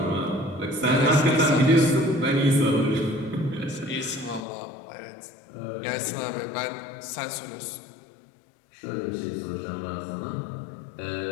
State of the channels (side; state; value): right; drops out; at 4.5 s